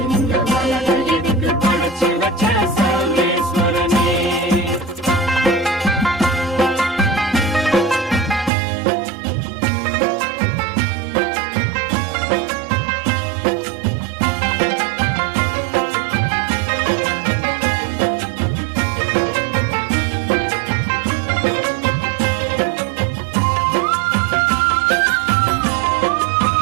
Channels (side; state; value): left; drops out; at 8.5 s